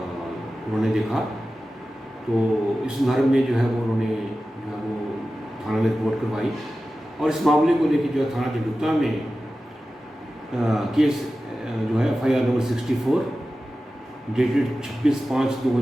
उन्होंने देखा। तो इस संदर्भ में जो है वो उन्होंने जो है वो थाना में रिपोर्ट करवाई और इस मामले को लेकर जो है थाना जडूता में केस जो है FIR नंबर 64 डेटेड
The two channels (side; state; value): both; normal; correlation 0.94